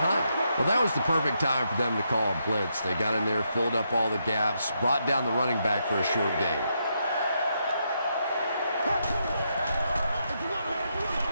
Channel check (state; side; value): inverted; both; correlation -0.80